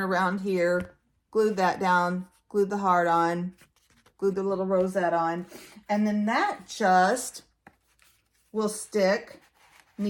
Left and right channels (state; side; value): identical; both; correlation 1.00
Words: around here, glued that down, glued the heart on, glued the little rosette on, and then that just will stick